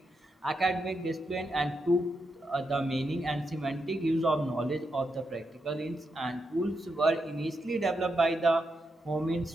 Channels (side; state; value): both; normal; correlation 0.84